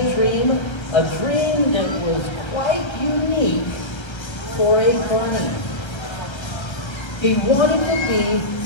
that was quite unique for a bunny. He wanted to be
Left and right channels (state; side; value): late; right; 1.3 ms